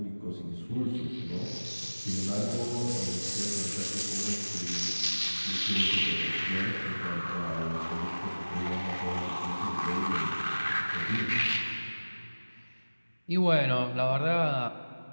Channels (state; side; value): inverted; both; correlation -1.00